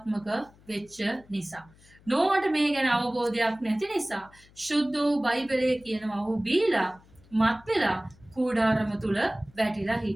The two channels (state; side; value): noise; left; hum, 27 dB below the sound